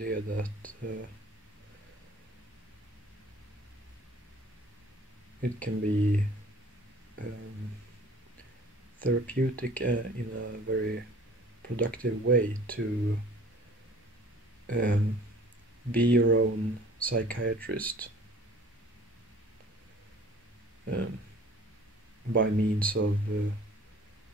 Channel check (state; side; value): normal; both; correlation 0.49